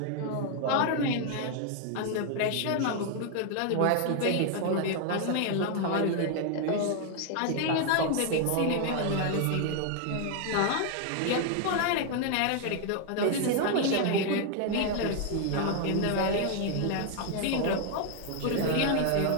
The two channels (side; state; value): both; different; correlation 0.00